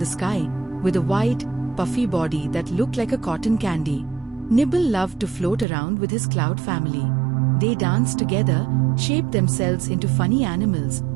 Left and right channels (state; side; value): drops out; left; at 5.7 s